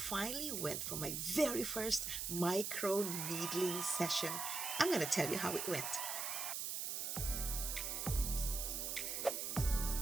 went for my very first microneedling session. I'm going to tell you how it went.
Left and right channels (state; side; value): noise; right; hiss, 2 dB below the sound